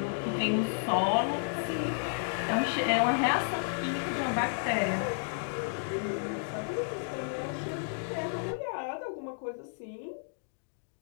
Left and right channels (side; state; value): right; silent; digital silence